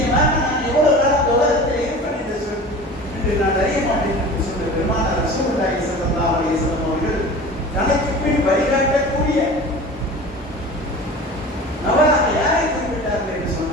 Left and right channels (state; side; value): normal; both; correlation 0.37